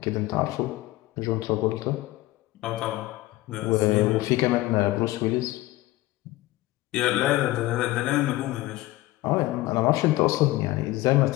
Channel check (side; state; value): right; quieter; 17.8 dB